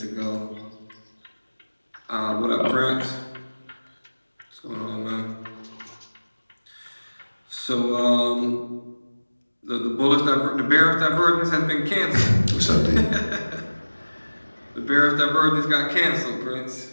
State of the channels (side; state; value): both; inverted; correlation -1.00